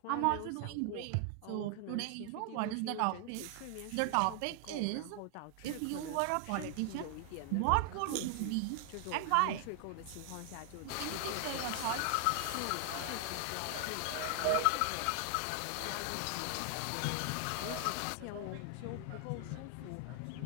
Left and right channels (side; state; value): both; different; correlation 0.00